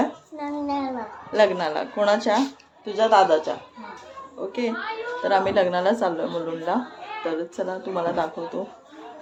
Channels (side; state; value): both; identical; correlation 1.00